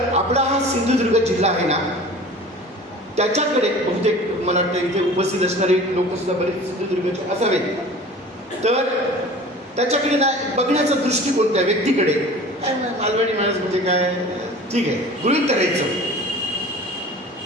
आपला हा सिंधुदुर्ग जिल्हा आहे ना, त्याच्याकडे बहुतेक मला वाटतं इथे उपस्थित असणारे लोक सुद्धा बरेच सिंधुदुर्गचे असावेत. तर त्याच्याकडे ना बघण्याचा दृष्टिकोन त्या व्यक्तीकडे, काय मालवणी माणूस म्हणजे काय, ठीक आहे, गृहीत करायचं,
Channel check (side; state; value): both; normal; correlation 0.41